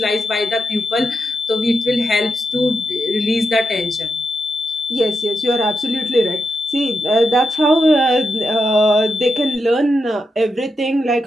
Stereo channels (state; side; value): normal; both; correlation 0.85